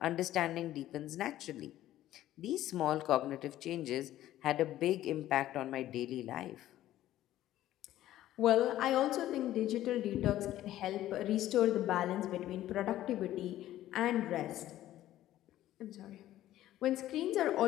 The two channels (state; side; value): quieter; right; 13.7 dB